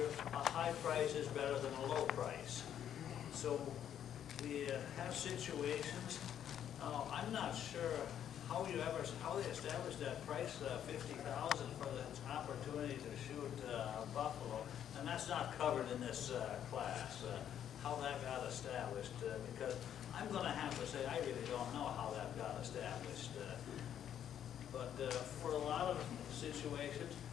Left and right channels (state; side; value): quieter; right; 9.8 dB